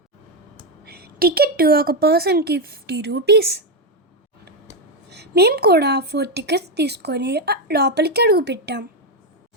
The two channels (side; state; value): both; normal; correlation 0.06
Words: టికెట్ ఒక పర్సన్కి 50 రూపీస్. మేము కూడా 4 టికెట్స్ తీసుకొని లోపలికి అడుగు పెట్టాం.